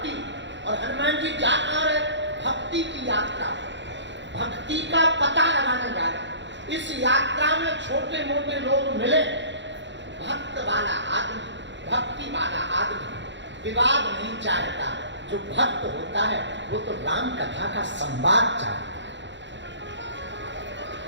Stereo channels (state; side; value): late; left; 0.53 ms